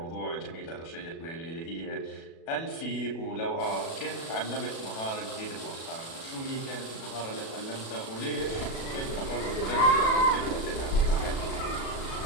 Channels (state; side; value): late; right; 37 ms